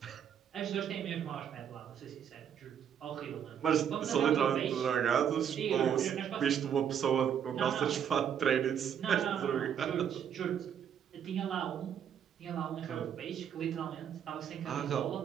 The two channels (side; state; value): left; quieter; 8.6 dB